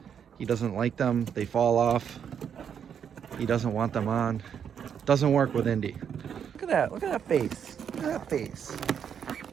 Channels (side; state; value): left; quieter; 8.0 dB